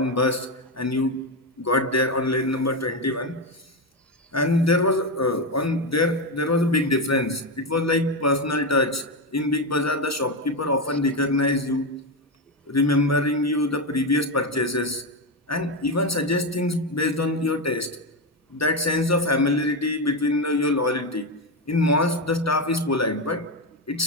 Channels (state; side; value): normal; both; correlation 0.11